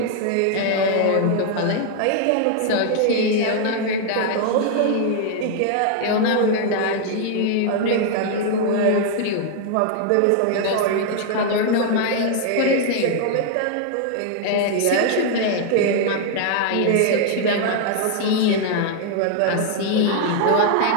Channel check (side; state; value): both; different; correlation 0.00